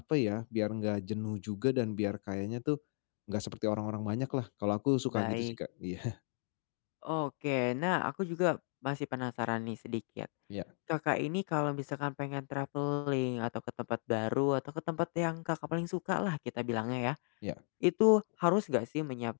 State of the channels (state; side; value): silent; right; 54 dB below the other